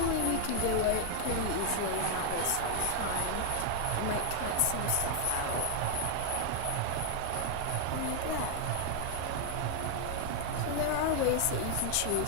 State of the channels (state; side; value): different; both; correlation 0.00